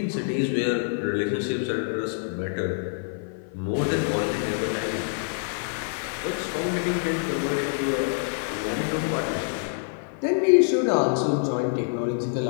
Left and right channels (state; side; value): silent; right; 55 dB below the other